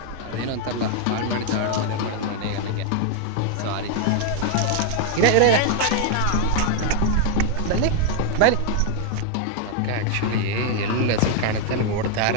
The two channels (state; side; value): different; both; correlation 0.00